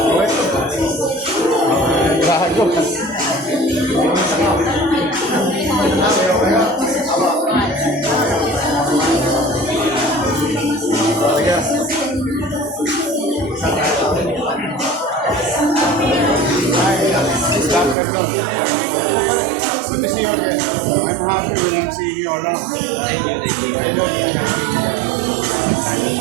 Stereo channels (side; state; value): left; drops out; at 17.9 s